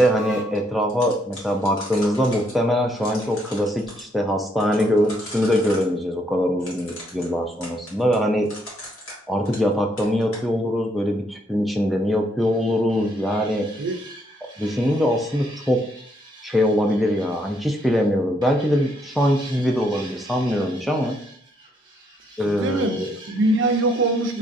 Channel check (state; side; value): normal; both; correlation 0.72